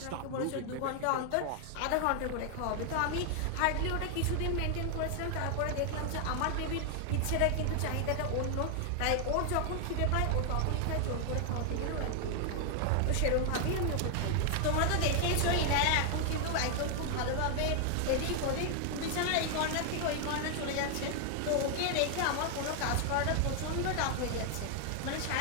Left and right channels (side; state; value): both; different; correlation 0.00